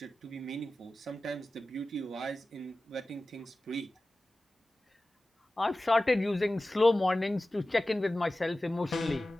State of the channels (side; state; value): both; normal; correlation 0.96